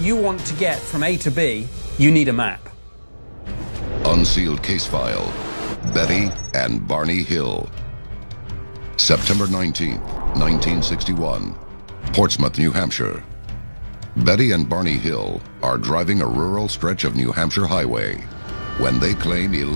you want to get from A to B, you need a map. Unsealed case file, Betty and Barney Hill. September 19th, 1961, Portsmouth, New Hampshire. Betty and Barney Hill are driving a rural stretch of New Hampshire highway when they claim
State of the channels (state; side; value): inverted; both; correlation -1.00